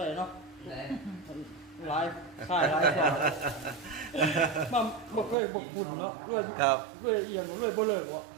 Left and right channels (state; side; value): drops out; left; at 5.4 s